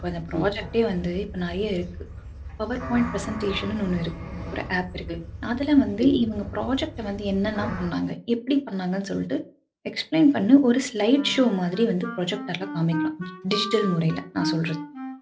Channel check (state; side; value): identical; both; correlation 1.00